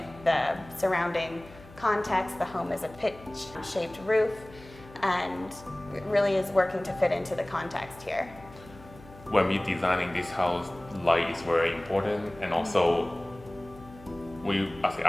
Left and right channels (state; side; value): noise; left; hum, 20 dB below the sound